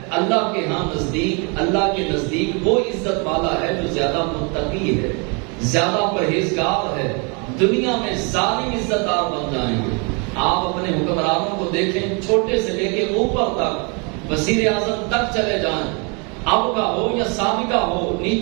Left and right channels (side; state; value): left; quieter; 33.1 dB